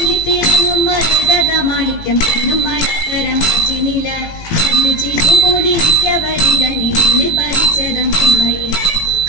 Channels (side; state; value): right; late; 18 ms